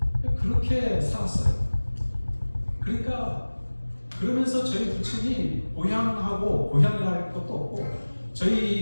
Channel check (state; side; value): inverted; both; correlation -1.00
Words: 그렇게 살았어요. 그러니까 그러면서 저희 부친이 고향이랄 것도 없고